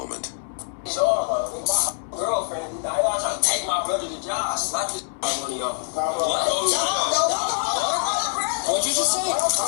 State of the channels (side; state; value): right; silent; digital silence